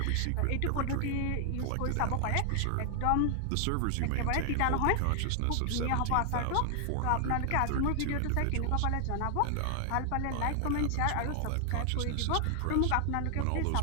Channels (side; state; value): both; different; correlation 0.00